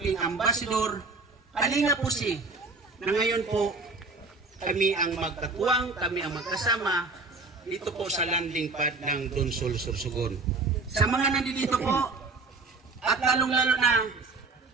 ambassador, Kalinga po na ngayon po kami ang magkatuwang, kami ang magkasama dito po sa landing pad ng Donsol Sorsogon. Sa mga nandito po, at lalong-lalo na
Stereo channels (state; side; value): quieter; left; 3.8 dB